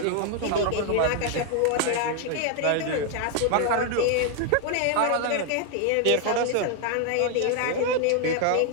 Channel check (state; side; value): different; both; correlation 0.00